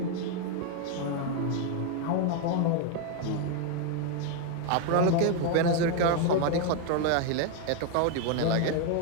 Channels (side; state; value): both; different; correlation 0.01